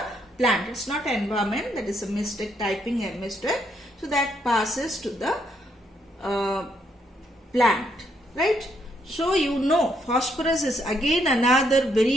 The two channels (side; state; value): both; normal; correlation 0.74